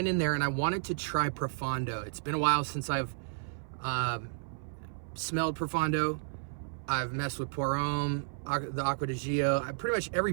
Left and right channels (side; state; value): left; silent; 56 dB below the other